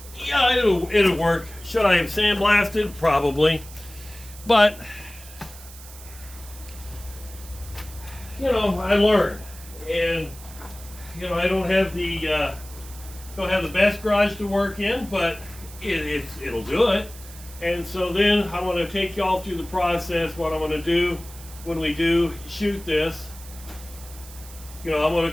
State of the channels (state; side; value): noise; right; hiss, 18 dB below the sound